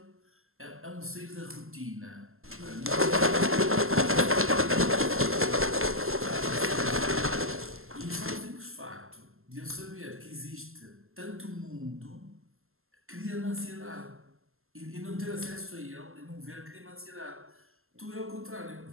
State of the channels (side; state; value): left; late; 0.62 ms